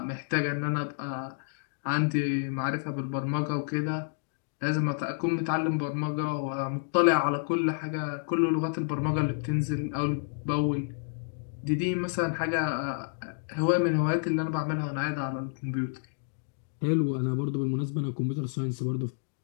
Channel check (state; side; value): silent; right; digital silence